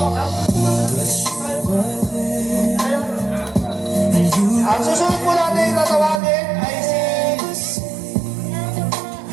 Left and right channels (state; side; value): drops out; left; at 6.2 s